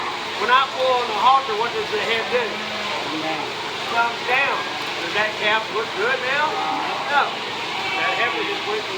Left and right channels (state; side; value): identical; both; correlation 1.00